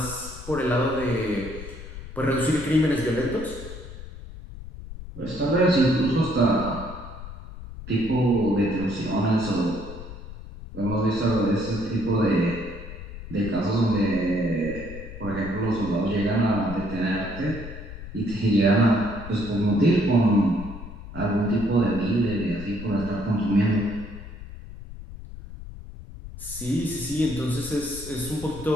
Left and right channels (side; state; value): left; noise; rumble, 12 dB below the sound